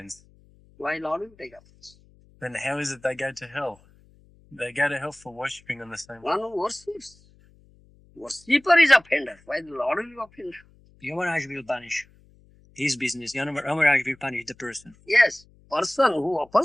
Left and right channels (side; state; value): left; noise; hum, 29 dB below the sound